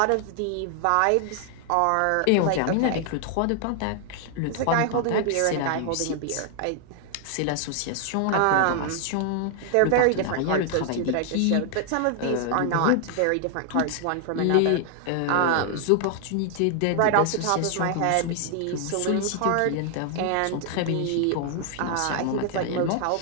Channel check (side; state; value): both; different; correlation 0.00